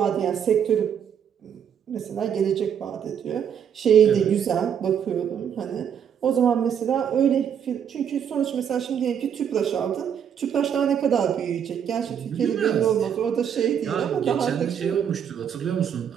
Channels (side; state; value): left; quieter; 8.3 dB